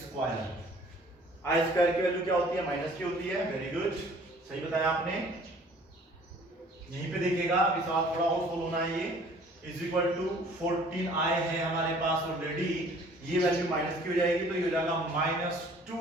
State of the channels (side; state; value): both; normal; correlation 0.53